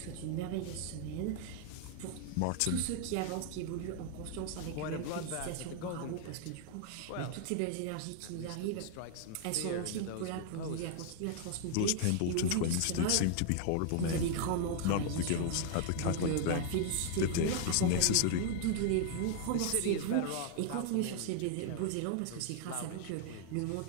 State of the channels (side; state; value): both; different; correlation 0.00